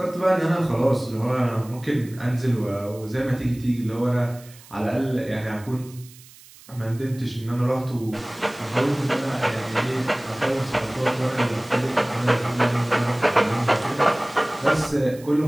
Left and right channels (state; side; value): noise; right; hiss, 22 dB below the sound